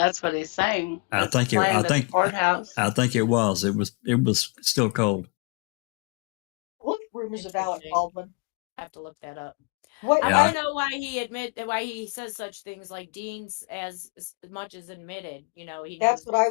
what he's saying. I It's planned at the courthouse. I think it was. It was still cold. What rumors of Alec Interesting. Baldwin? I have to look that up. What? I Yeah. want to know why he says such things like Dean's as much as admitted. You know, he knows That's what I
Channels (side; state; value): right; quieter; 32.5 dB